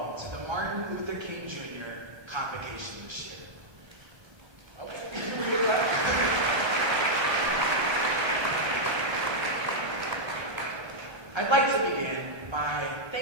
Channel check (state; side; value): late; left; 1.2 ms